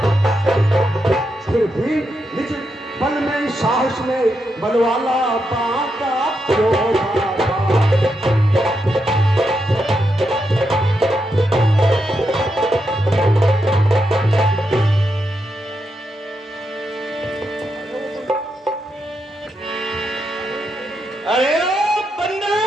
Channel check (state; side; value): normal; both; correlation 0.83